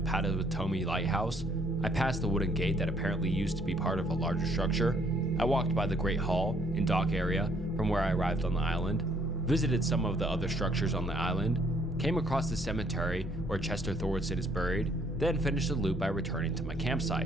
Lighthouse. I passed the wooden gate that apparently used to be part of a larger structure. I walked by the Great Hall and dock area from where I arrived on the island, visited some of the other structures on the island, came across the cemetery where Chester Thordson is buried, then finished the loop by returning to my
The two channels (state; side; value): normal; both; correlation 0.65